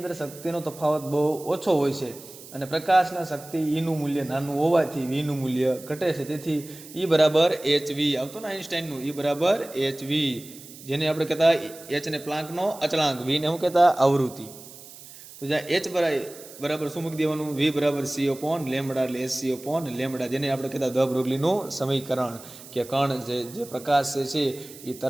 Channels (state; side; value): noise; right; hiss, 17 dB below the sound